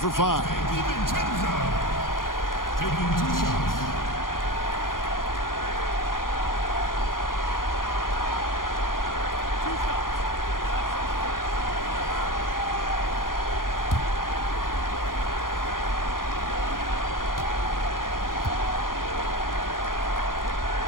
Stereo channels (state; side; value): late; right; 0.90 ms